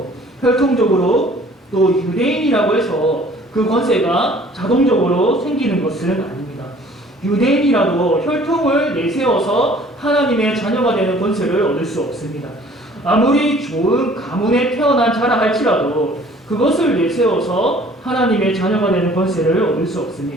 혈통적으로 또 유대인이라고 해서 그 권세가 자동적으로 생기는 것은 아닙니다. 유대인이라도 혈통을 내세워서 하나님의 자녀가 되는 권세를 얻을 수 없습니다. 아무리 좋은 가문에 태어난 자라 할지라도 그것을 내세워서 하나님의 자녀가 되는 권세를 얻을 수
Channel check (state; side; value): normal; both; correlation 0.53